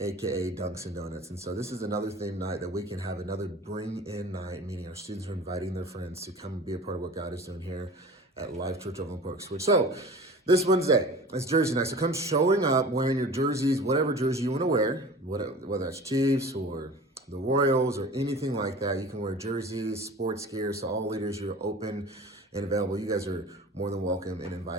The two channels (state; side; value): normal; both; correlation 0.40